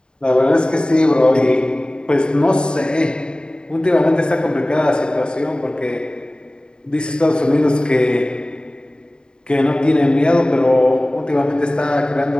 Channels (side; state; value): right; late; 0.049 ms